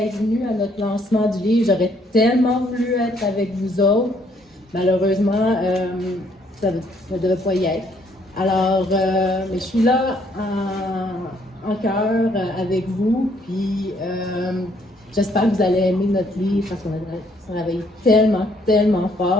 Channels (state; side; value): normal; both; correlation 0.67